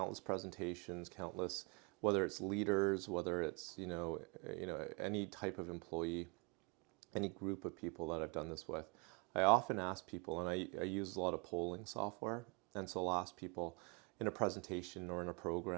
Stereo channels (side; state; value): left; quieter; 30.4 dB